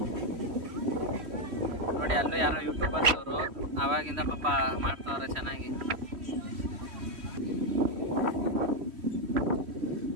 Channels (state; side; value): late; left; 3.1 ms